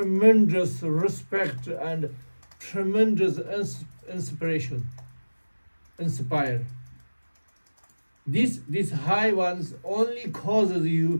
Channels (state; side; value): inverted; both; correlation -1.00